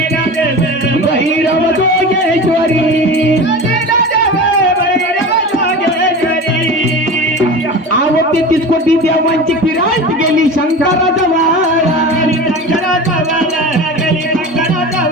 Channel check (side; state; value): both; normal; correlation 0.31